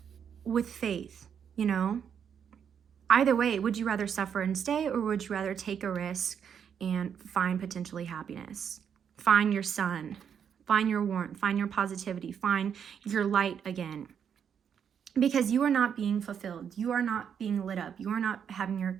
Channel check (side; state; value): left; quieter; 7.9 dB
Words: with faith, you know? Either way, would you rather suffer and stay, or would you rather take a risk and find potentially happiness? Find your sun, find your warmth, find your positivity, find your light again. Because you are not being fulfilled. You are not being lit up. You are not having your